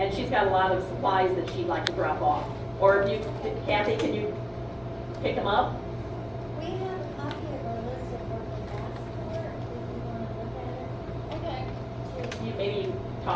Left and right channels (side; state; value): both; identical; correlation 1.00